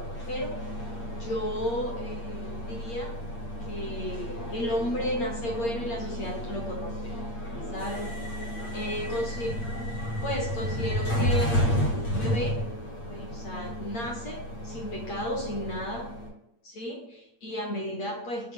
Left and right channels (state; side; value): late; right; 8.6 ms